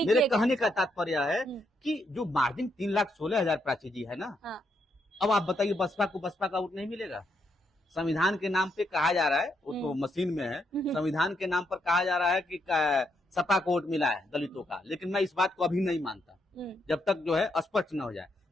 मेरे कहने का तात्पर्य है कि जो मार्जिन 3,16,000 प्राची जी है ना, अब आप बताइए बसपा का वोट नहीं मिलेगा। संविधान के नाम पे कहा जा रहा है, वो तो मशीन में है, संविधान के नाम पर कहा जा रहा है कि सपा को वोट मिला है दलितों का, लेकिन मैं इस बात को अभी नहीं मानता जब तक जो है स्पष्ट न हो जाए।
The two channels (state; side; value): normal; both; correlation 0.78